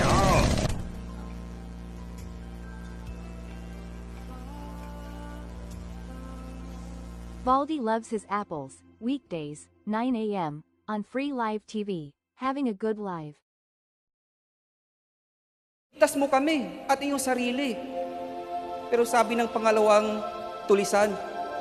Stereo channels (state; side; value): identical; both; correlation 1.00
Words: Baldi loves his apples, weekdays, 9 a.m. on free live TV. Having a good live. Tas mo kami at iyong sarili. Pero sabi ng pangalawang tulisan,